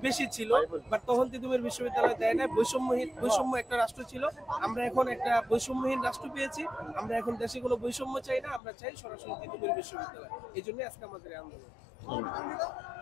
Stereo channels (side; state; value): right; drops out; at 8.6 s